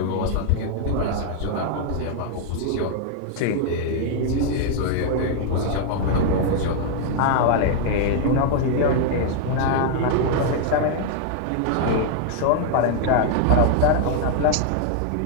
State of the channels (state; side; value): different; both; correlation 0.00